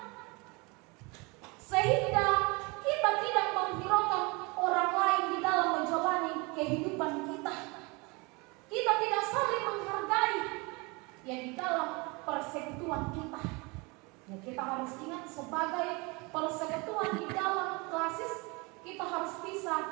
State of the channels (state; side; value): quieter; left; 27.5 dB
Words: sehingga kita tidak menghiraukan orang lain di dalam menjalani kehidupan kita. Kita tidak saling menghargai ya di dalam persekutuan kita. Ya, kita harus ingat sebagai persekutuan di dalam klasis, kita harus